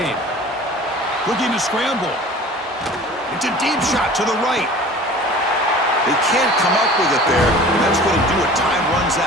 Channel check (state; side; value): normal; both; correlation 0.43